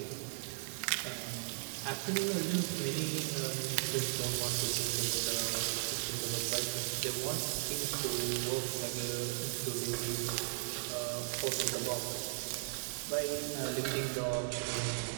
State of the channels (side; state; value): left; silent; digital silence